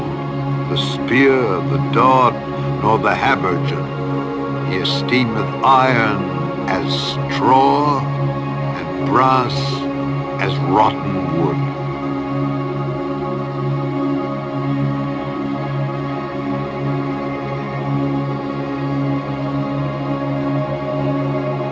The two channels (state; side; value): identical; both; correlation 1.00